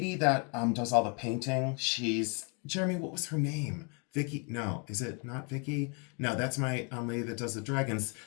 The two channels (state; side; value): quieter; right; 35.1 dB